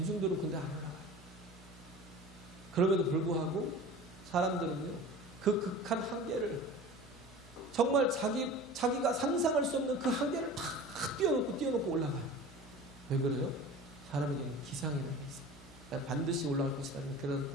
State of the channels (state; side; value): normal; both; correlation 0.38